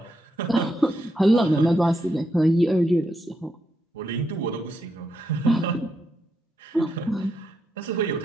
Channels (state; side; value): normal; both; correlation 0.81